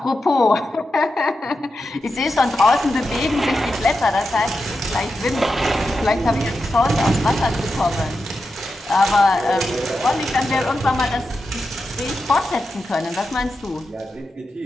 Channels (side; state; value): both; normal; correlation 0.89